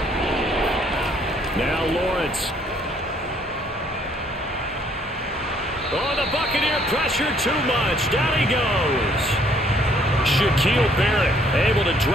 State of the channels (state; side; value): normal; both; correlation 0.64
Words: Now Lawrence. Oh, the Buccaneer pressure too much. Down he goes. Shaquille Barrett able to